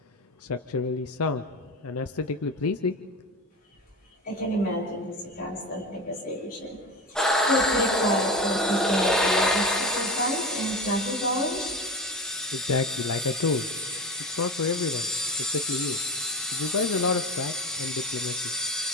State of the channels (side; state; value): both; normal; correlation 0.26